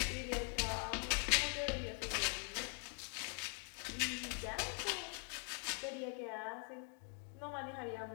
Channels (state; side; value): quieter; right; 37.4 dB